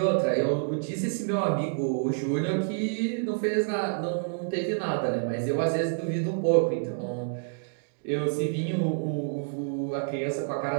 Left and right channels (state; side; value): silent; left; digital silence